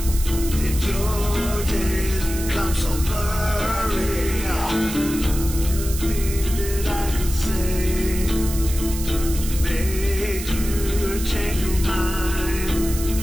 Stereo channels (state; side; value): noise; right; hiss, 9 dB below the sound